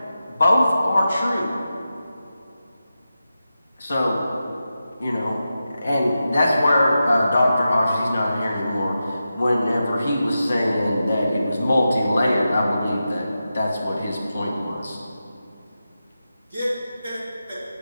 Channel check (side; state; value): both; inverted; correlation -0.91